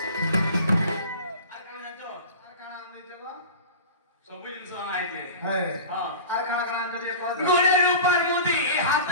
আর কোন জানো আর কানা আনছো গো সবু জিনিস আইছে হ্যাঁ হ্যাঁ আর কানা কানা আনছো দিয়ে কও গোড়ের উপর মুদি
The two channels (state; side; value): inverted; both; correlation -0.35